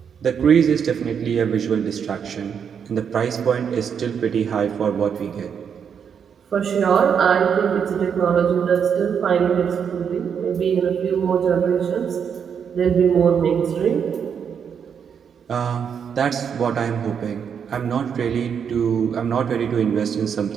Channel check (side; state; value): left; quieter; 7.3 dB